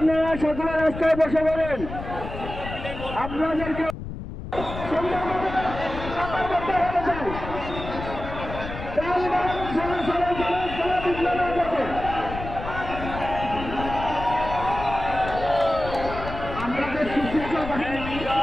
সকলে রাস্তায় বসে পড়েন। আপনাদেরকে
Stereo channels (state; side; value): noise; left; rumble, 9 dB below the sound